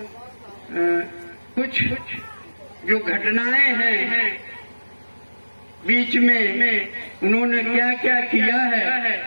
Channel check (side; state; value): both; inverted; correlation -1.00